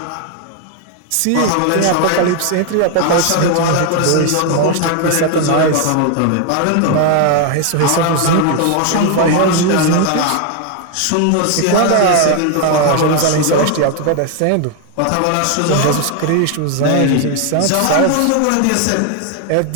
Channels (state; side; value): different; both; correlation 0.01